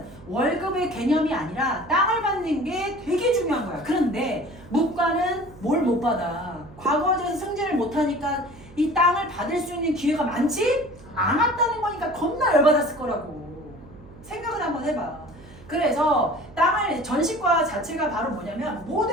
월급의 개념이 아니라 땅을 받는 게 되게 중요한 거야. 그런데 문과는 뭘 못 받아? 과거에서 승진을 못하니까 이 땅을 받을 수 있는 기회가 많지 않았다는 거니까 겁나 열받았을 거라고. 생각을 한번 해봐. 그래서 땅을 전시과 자체가 바로 뭐냐면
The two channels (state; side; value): noise; right; hum, 20 dB below the sound